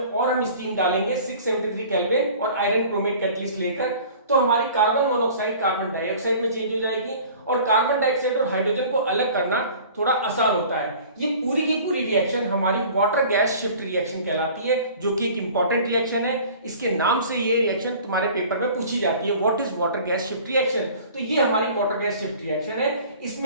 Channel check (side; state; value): both; inverted; correlation -0.46